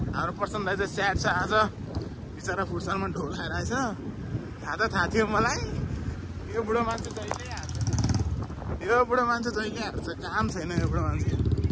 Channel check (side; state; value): both; identical; correlation 1.00